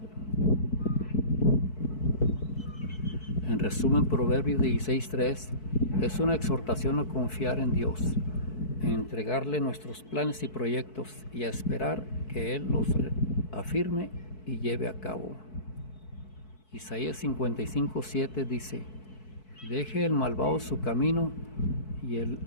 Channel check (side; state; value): right; late; 4.6 ms